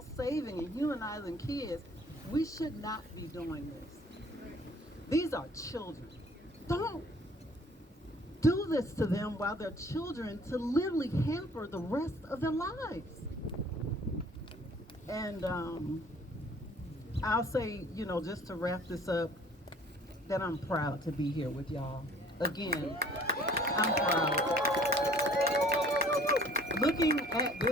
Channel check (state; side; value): normal; both; correlation 0.53